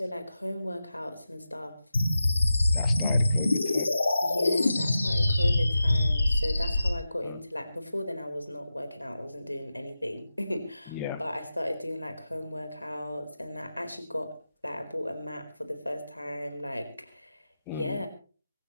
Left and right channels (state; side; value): inverted; both; correlation -0.91